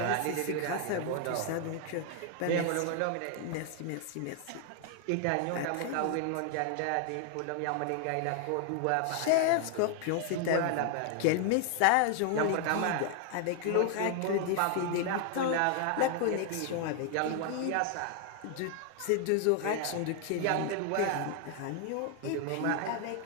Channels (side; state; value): both; different; correlation 0.00